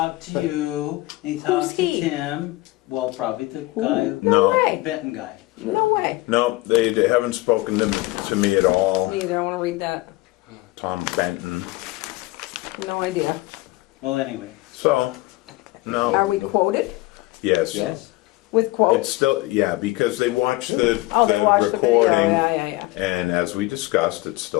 to you, and he talked to he? Tim. Well, probably the guy, No No, way. Benton guy. No way. no, they haven't spoken to me at all. Me either. I want to read that. Tom Benton. No idea. Well, anyway, So, Are no, we quoted yes. yes. with It's quotes? still, yeah, because they watched the Oh, they watched the video. recording. Yeah, yeah, yeah. And as we discussed, it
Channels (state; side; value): quieter; right; 19.9 dB